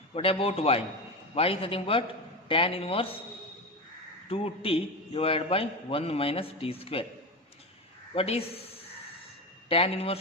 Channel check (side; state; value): both; normal; correlation 0.20